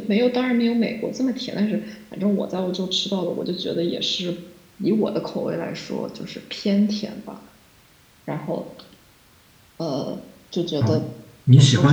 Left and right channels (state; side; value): identical; both; correlation 1.00